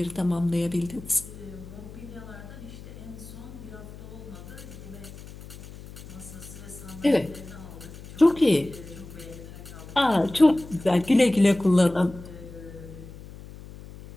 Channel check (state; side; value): noise; left; hum, 15 dB below the sound